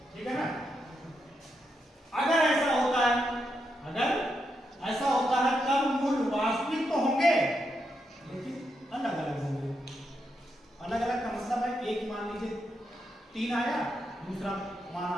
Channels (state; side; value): normal; both; correlation 0.83